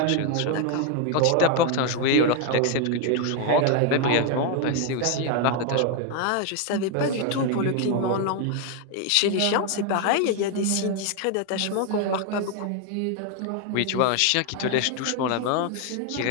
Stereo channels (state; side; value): different; both; correlation 0.01